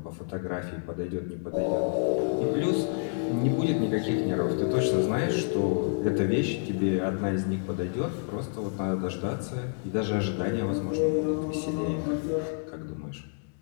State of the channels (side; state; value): right; silent; digital silence